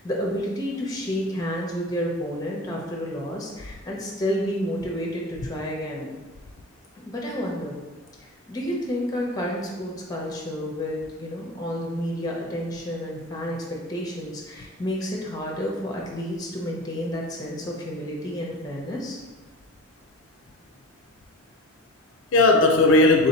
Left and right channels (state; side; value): normal; both; correlation 0.32